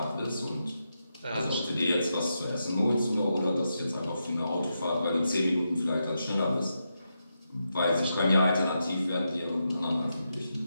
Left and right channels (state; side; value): inverted; both; correlation -0.86